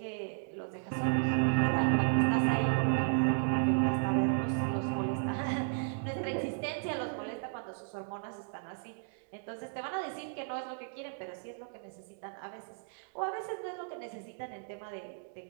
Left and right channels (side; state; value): left; silent; digital silence